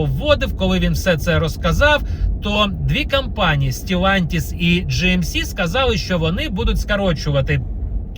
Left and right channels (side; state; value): both; identical; correlation 1.00